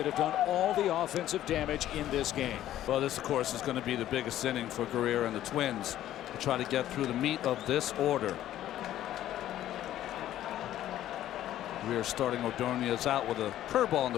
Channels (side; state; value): right; quieter; 12.7 dB